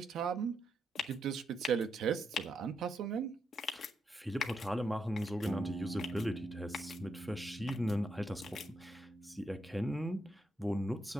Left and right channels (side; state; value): both; normal; correlation 0.81